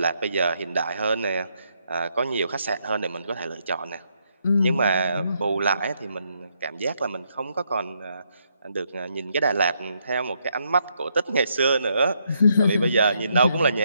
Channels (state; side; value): inverted; both; correlation -0.76